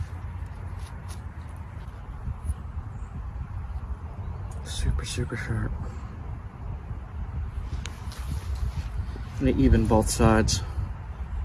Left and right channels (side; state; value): both; identical; correlation 1.00